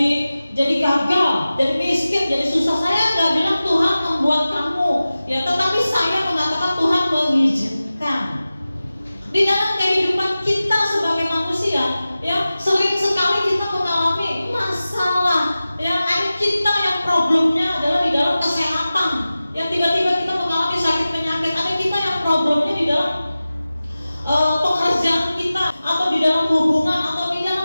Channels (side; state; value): both; inverted; correlation -0.96